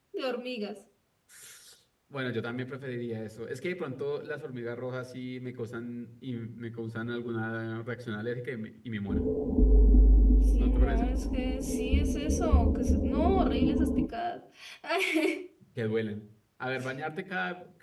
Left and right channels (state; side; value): identical; both; correlation 1.00